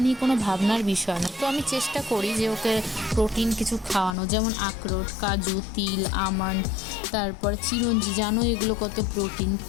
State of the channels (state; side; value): drops out; right; at 4.2 s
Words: নিয়ে কোনো ভাবনার বিষয় না। তো আমি চেষ্টা করি যে ওকে প্রোটিন কিছু খাওয়ানো, যেমন আখরোট, কাজু, তিল, আমন্ড, তারপর চিরঞ্জি। জানো এগুলো কত প্রোটিন।